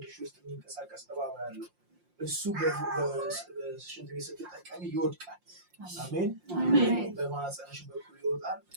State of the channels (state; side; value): late; left; 5.7 ms